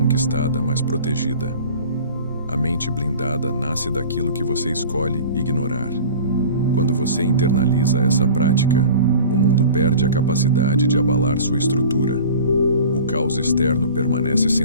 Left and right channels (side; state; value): both; inverted; correlation -0.41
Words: mas protegida. A mente blindada nasce daquilo que você escolhe ignorar. Quando você internaliza essa prática, o mundo perde a capacidade de abalar sua estrutura. O caos externo permanece